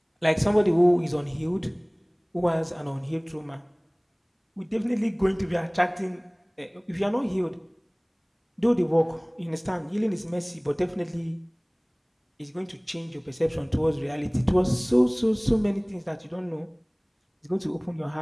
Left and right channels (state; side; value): identical; both; correlation 1.00